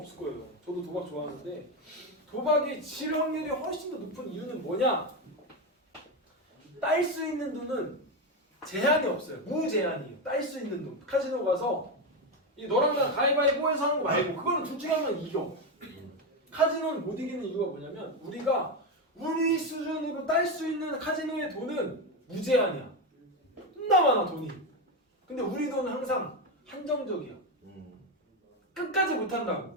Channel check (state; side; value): normal; both; correlation 0.12